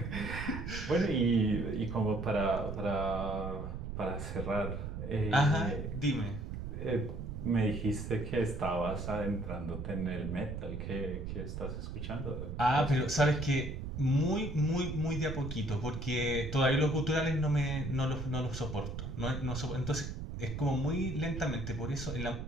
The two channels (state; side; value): noise; right; rumble, 6 dB below the sound